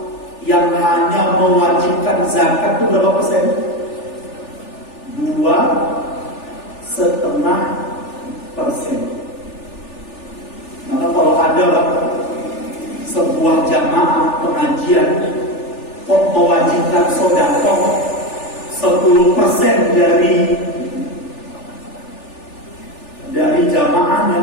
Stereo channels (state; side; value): late; right; 3.4 ms